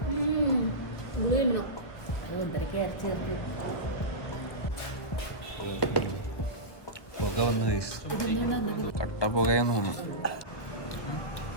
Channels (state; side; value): late; right; 1.6 ms